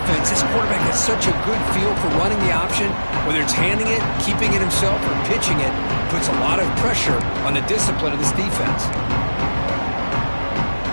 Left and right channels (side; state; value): both; inverted; correlation -1.00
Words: This quarterback has such a good feel for running the option. Whether it's handing it, keeping it himself, or pitching it, puts a lot of pressure on the discipline of this defense.